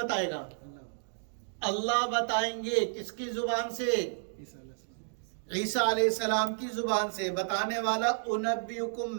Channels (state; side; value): silent; left; digital silence